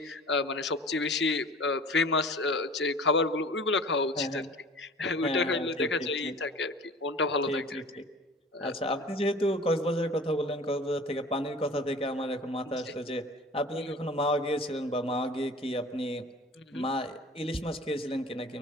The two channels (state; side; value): normal; both; correlation 0.43